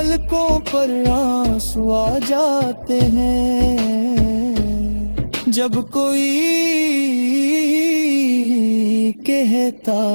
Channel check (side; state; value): both; inverted; correlation -1.00